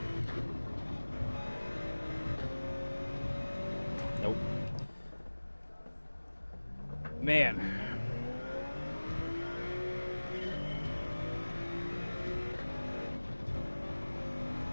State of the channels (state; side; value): inverted; both; correlation -1.00